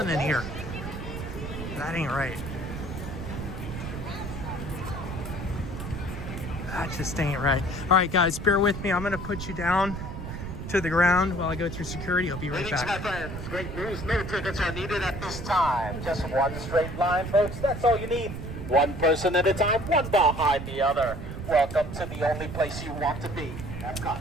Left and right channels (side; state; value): right; noise; rumble, 7 dB below the sound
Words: an ear. That ain't right. That just ain't right. All right, guys, bear with me. I'm gonna put you down to the ground while I go through security. I'll be right back. My friends, great news. No tickets are needed at this time. Just one straight line, folks. That's all you need. One person at a time, one behind the other. Welcome to the only place you want to be, Epcot.